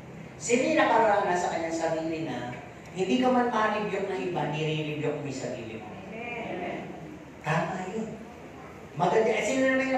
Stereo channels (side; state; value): both; identical; correlation 1.00